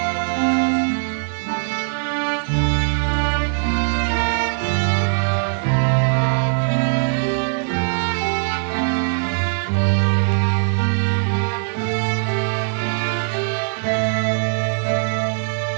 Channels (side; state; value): left; silent; 58 dB below the other